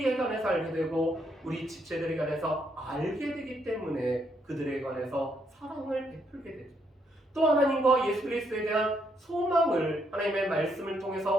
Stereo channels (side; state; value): both; normal; correlation 0.74